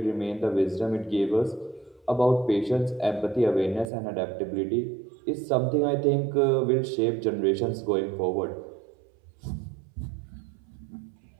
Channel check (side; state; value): left; drops out; at 3.9 s